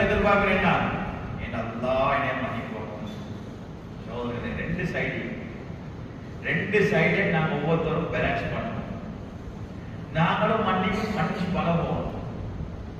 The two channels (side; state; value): both; identical; correlation 1.00